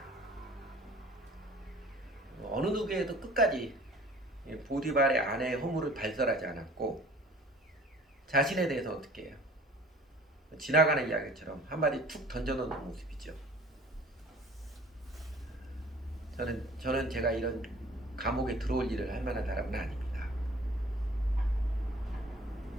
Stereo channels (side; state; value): both; normal; correlation 0.49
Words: 어느 누구에도 끝까지 보디발의 아내의 허물을 발설하지 않았고 자신에 대해서 어떻게 해요? 지나가는 이야기처럼 한마디 툭 던져놓는 모습이죠. 저는 제가 이런 감옥에 들어올 일을 할 만한 사람은 아닙니다.